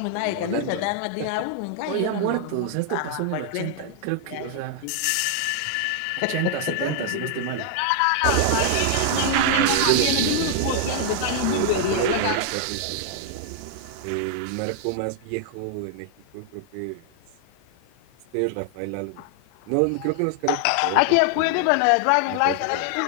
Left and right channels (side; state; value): both; different; correlation 0.00